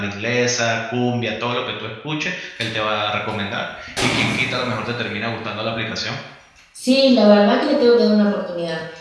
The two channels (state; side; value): identical; both; correlation 1.00